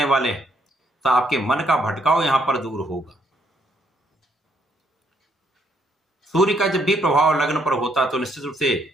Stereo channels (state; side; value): normal; both; correlation 0.71